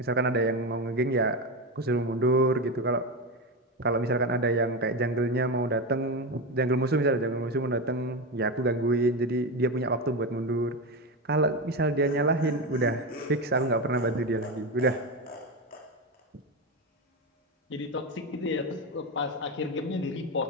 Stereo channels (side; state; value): both; normal; correlation 0.17